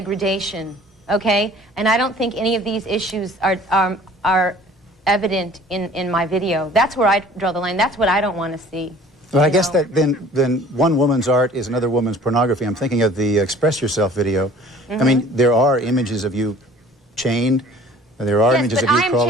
okay? And I don't think any of these issues are evident in my video. That's where I draw the line. That's what I don't want to see. Well, I guess that then one woman's art is another woman's pornography. I'm thinking of the Express Yourself video. I mean, there are images of you chained. There are images of you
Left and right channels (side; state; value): both; normal; correlation 0.50